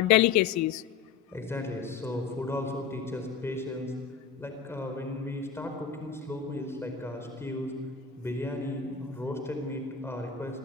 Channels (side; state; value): right; quieter; 6.6 dB